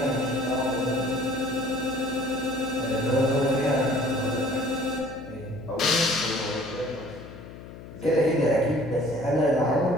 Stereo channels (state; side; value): noise; left; hum, 15 dB below the sound